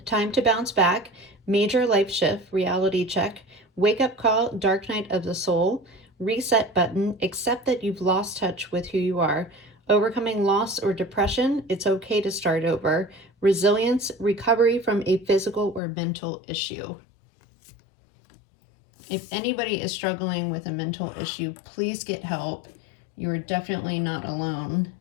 Time to bounce back, major life shift, reality check, wake up call, dark night of the soul, reset button, accept that you've lost touch with who you are, overcoming loss or depression, it's okay to start over, resilience, recovery from a physical or mental issue. If anybody is struggling with a mental issue, please get help. You are definitely not alone.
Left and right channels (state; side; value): drops out; right; at 15.8 s